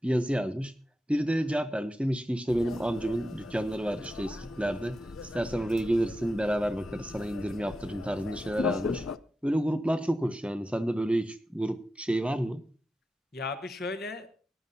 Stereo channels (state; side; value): normal; both; correlation 0.90